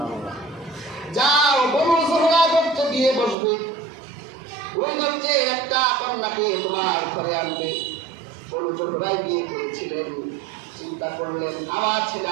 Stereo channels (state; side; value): drops out; left; at 3.4 s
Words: যাও, বনু যুহরা গোত্রে গিয়ে বসবে, ওই গোত্রে একটা কন্যাকে তোমার ঘরে আনবে। বনু যুহরায় বিয়ে করেছিলেন। চিন্তা করলেন, আমার ছেলে